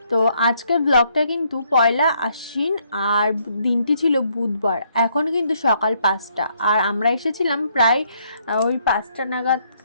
তো আজকের ব্লগটা কিন্তু পয়লা আশ্বিন আর দিনটি ছিল বুধবার। এখন কিন্তু সকাল 5টা আর আমরা এসেছিলাম প্রায় ওই 5টা নাগাদ,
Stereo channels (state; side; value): inverted; both; correlation -0.71